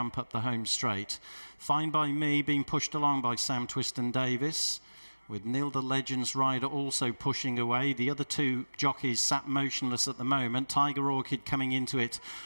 up the home straight. Fine by Me being pushed along by Sam Twiston-Davis, with Neil the Legend's rider also pushing away. The other 2 jockeys sat motionless at the moment. Tiger Orchid coming into it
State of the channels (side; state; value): both; inverted; correlation -1.00